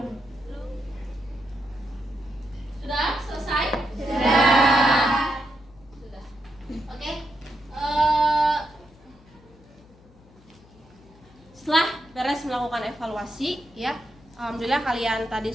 Sudah selesai? Sudah. Oke. Setelah beres melakukan evaluasi, ya, alhamdulillah kalian tadi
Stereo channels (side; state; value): left; noise; hum, 26 dB below the sound